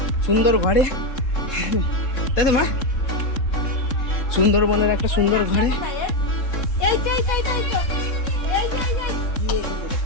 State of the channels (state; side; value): late; right; 3.7 ms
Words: সুন্দর ঘরে, তাই তো মা? সুন্দরবনের একটা সুন্দর ঘরে।